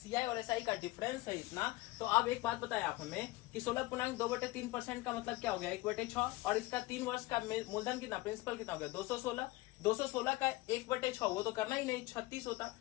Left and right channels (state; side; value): quieter; right; 19.9 dB